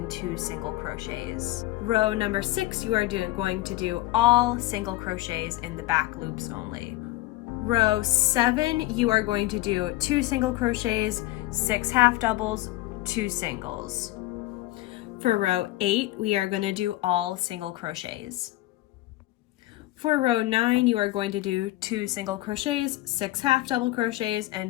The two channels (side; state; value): right; quieter; 17.8 dB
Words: 2 single crochets. Row number 6, you are going to do all single crochets in the back loops only. Row 7, you are going to do 2 single crochets, 6 half doubles, 2 singles. For row 8, we are going to do all single crochets. For row 9, you are going to do 2 single crochets, 6 half double crochets,